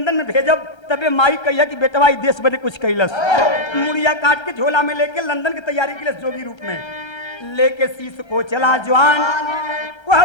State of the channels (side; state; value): right; late; 1.3 ms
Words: में भेजब तबे माई कहिया कि बेटवा ई देश बदे कुछ कैलस। मुड़िया काट के झोला में लेके लंदन की तैयारी के लिए जोगी रूप में लेके शीश को चला जवान वह